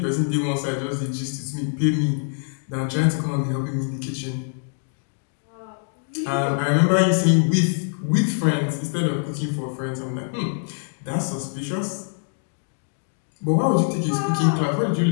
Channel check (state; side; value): silent; right; digital silence